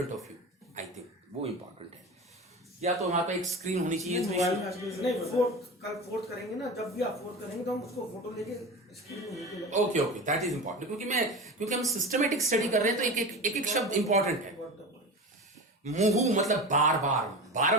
of you, I think वो इंपॉर्टेंट है। या तो हमारे पास एक स्क्रीन होनी चाहिए। नहीं, कल फोर्थ करेंगे ना, जब भी आप फोर्थ करेंगे तो हम उसको फोटो लेके स्क्रीन में ओके, दैट इज इंपॉर्टेंट, क्योंकि हम सिस्टमेटिक स्टडी कर रहे हैं तो एक शब्द इंपॉर्टेंट है। मुहु मतलब बार बार,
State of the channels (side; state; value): both; normal; correlation 0.29